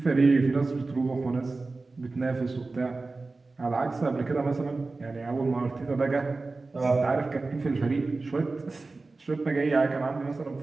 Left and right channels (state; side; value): quieter; left; 3.6 dB